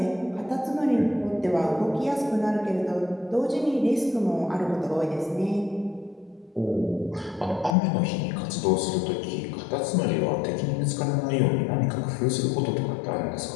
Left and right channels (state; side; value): drops out; right; at 7.8 s